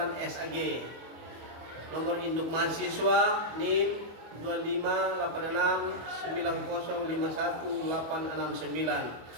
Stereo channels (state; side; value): late; left; 25 ms